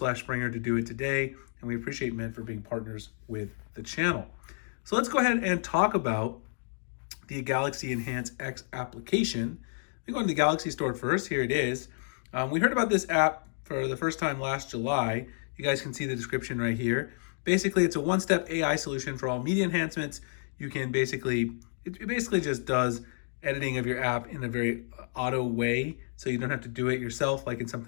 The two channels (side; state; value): right; silent; digital silence